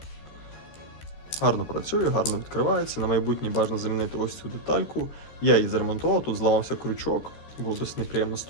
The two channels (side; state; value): right; late; 13 ms